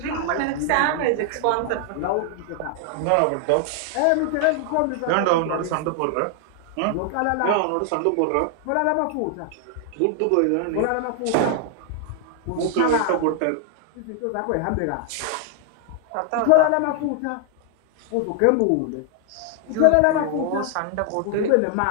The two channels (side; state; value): both; different; correlation 0.00